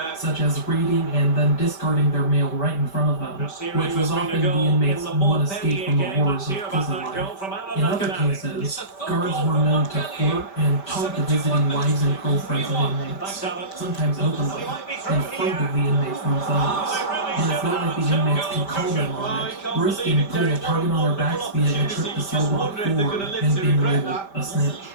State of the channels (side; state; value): right; late; 5.1 ms